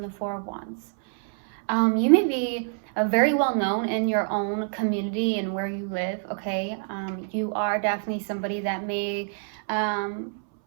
the Four of Wands. You may be very well known in your own community and where you live, okay? You are definitely somebody that may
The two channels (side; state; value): left; silent; 61 dB below the other